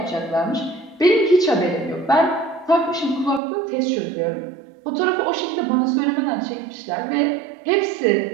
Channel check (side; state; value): left; drops out; at 3.4 s